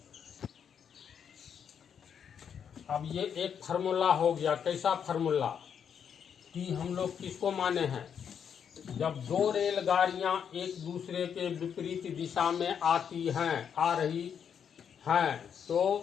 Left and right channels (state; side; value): quieter; right; 7.8 dB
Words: अब ये एक फार्मूला हो गया। कैसा फार्मूला? T हम लोग किसको माने हैं? जब दो रेलगाड़ियां एक दूसरे के विपरीत दिशा में आ रही हैं तो